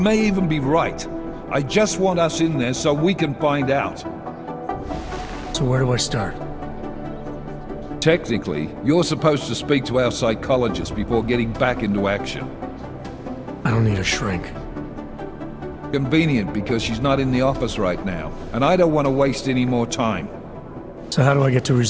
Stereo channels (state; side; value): identical; both; correlation 1.00